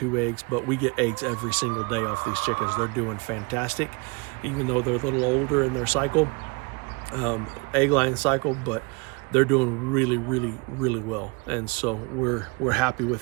eggs, but we get eggs every single day off these chickens. They're doing fantastic, even though they're a little older in their cycle, egg laying cycle, but they're doing really, really, really well. And so we're happy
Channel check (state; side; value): quieter; left; 30.0 dB